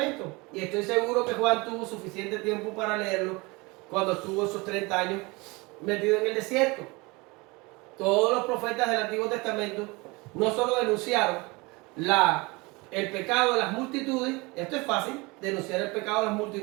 Y estoy seguro que Juan tuvo suficiente tiempo para leerlo cuando estuvo esos 30 años metido en el desierto. Todos los profetas del Antiguo Testamento no solo denunciaron el pecado de las multitudes, esto es fácil, denunciar el pecado de las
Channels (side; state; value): left; quieter; 25.4 dB